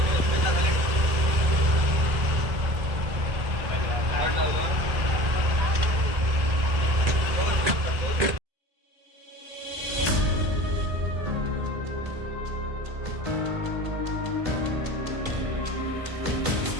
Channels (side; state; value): left; late; 1.6 ms